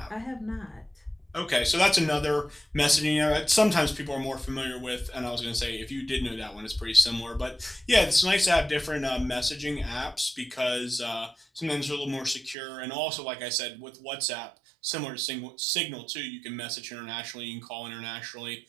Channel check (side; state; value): left; drops out; at 12.6 s